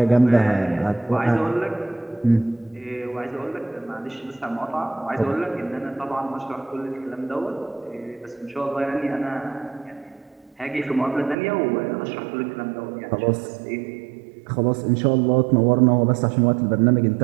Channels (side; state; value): left; drops out; at 11.4 s